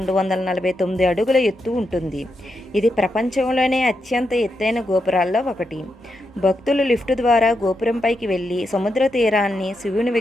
అడుగుల ఎత్తు ఉంటుంది. ఇది ప్రపంచంలోనే అత్యంత ఎత్తైన గోపురాల్లో ఒకటి. భక్తులు లిఫ్ట్ ద్వారా గోపురంపైకి వెళ్ళి సముద్ర తీరాన్ని, శివుని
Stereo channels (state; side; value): normal; both; correlation 0.84